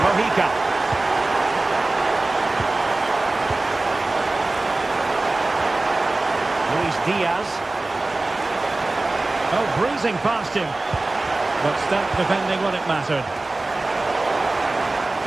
Luis Diaz. breezing past him. But stout defending when it mattered.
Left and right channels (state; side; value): quieter; left; 3.0 dB